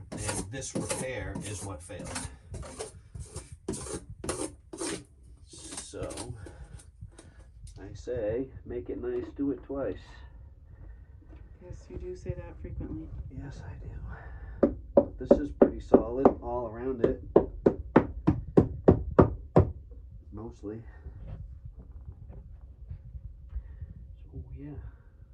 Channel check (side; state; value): both; identical; correlation 1.00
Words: and this repair is what failed. So I say, make it nice, do it twice. Yes, you do say that frequently. Yes, I do. This is pretty solid all around it. Mostly. So yeah.